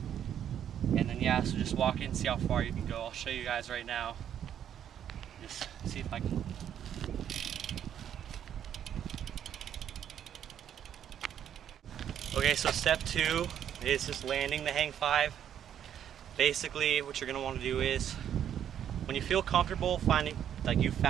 And then so just walk in and see how far you can go. I'll show you guys right now. Just see if I can. Okay, so step 2 is just landing the hang 5. Basically, what you're going to want to do is, when you feel comfortable finding, like you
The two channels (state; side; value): quieter; left; 9.6 dB